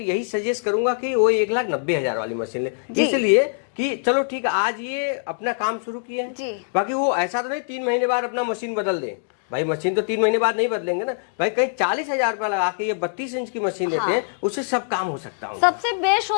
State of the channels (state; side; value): silent; right; digital silence